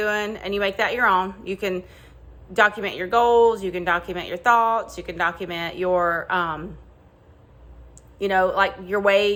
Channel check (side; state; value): both; identical; correlation 1.00